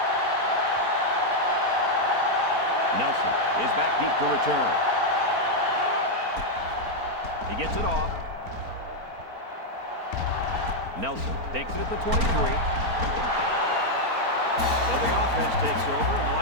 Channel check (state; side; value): late; left; 4.4 ms